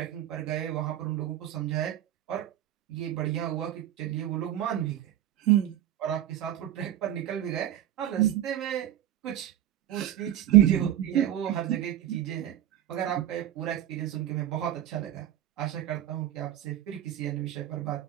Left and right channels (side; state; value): left; quieter; 12.0 dB